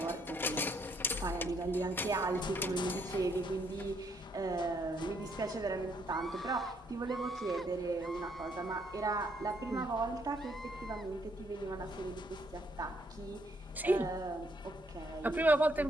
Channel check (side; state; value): both; normal; correlation 0.71